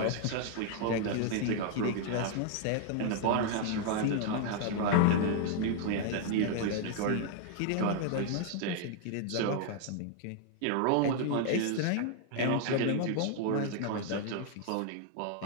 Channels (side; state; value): both; different; correlation 0.00